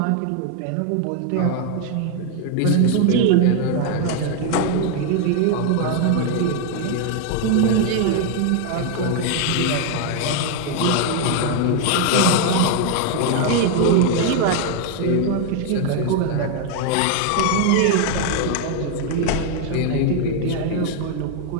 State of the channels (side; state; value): both; different; correlation 0.01